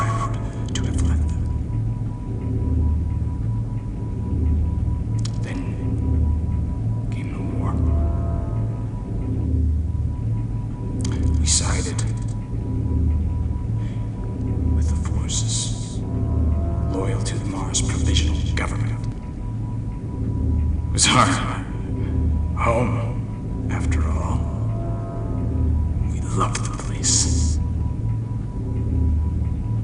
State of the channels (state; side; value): identical; both; correlation 1.00